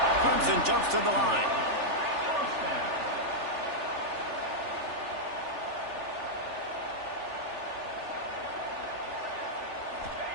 Clemson jumps to the line.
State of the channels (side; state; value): left; late; 3.4 ms